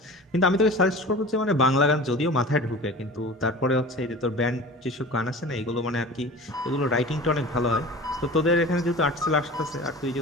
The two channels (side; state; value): both; normal; correlation 0.37